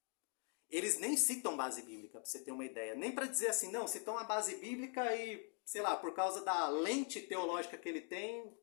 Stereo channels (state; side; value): quieter; right; 39.1 dB